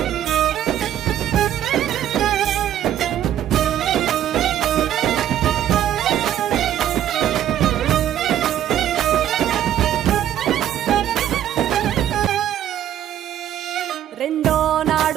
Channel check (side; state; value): left; quieter; 11.1 dB